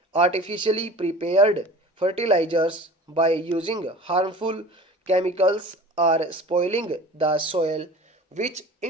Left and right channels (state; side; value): normal; both; correlation 0.41